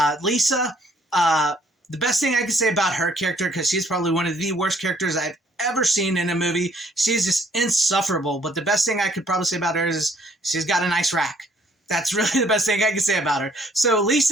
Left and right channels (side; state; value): both; normal; correlation 0.64